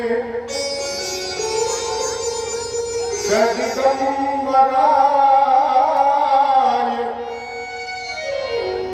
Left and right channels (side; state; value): both; identical; correlation 1.00